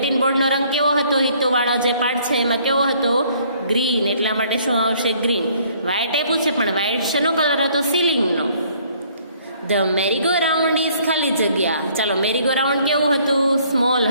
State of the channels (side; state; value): both; inverted; correlation -0.61